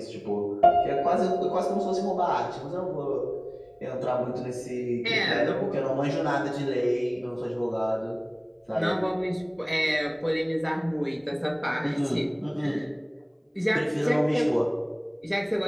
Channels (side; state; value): both; identical; correlation 1.00